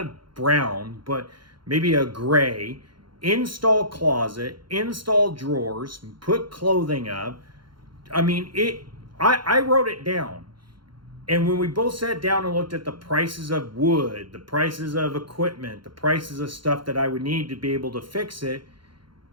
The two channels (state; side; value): late; left; 0.73 ms